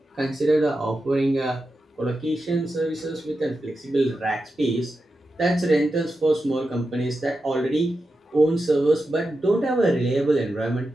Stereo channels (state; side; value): normal; both; correlation 0.90